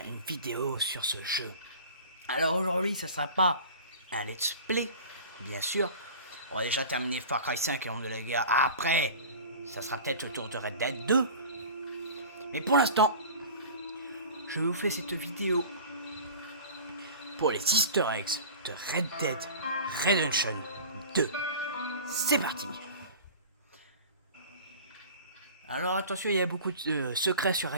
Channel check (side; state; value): both; inverted; correlation -0.39